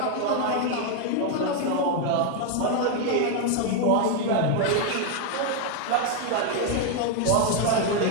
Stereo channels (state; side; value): different; both; correlation 0.01